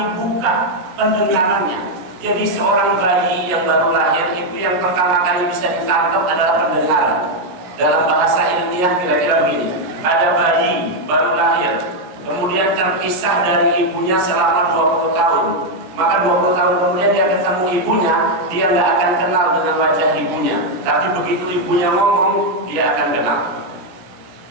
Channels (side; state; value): left; late; 17 ms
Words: buka pendengarannya. Jadi seorang bayi yang baru lahir itu yang pertama kali bisa ditangkap adalah pendengaran. Dalam bahasa ilmiah kira-kira begini, ada bayi baru lahir, kemudian terpisah dari ibunya selama 20 tahun. Maka 20 tahun kemudian dia ketemu ibunya, dia nggak akan kenal dengan wajah ibunya. Tapi begitu ibunya ngomong, dia akan kenal.